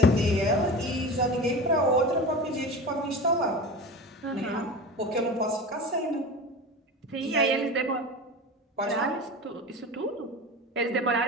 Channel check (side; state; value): both; normal; correlation 0.31